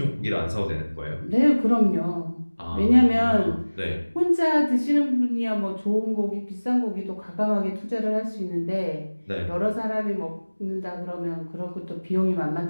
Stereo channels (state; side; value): inverted; both; correlation -1.00